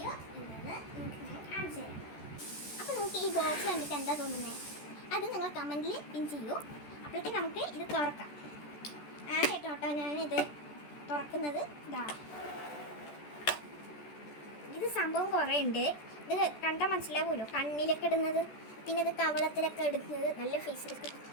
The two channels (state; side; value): late; right; 14 ms